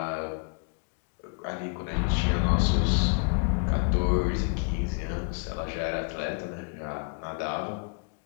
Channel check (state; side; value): quieter; right; 38.8 dB